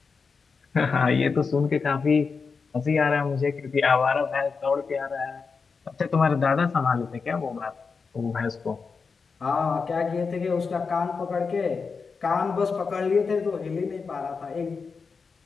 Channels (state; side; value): quieter; right; 5.0 dB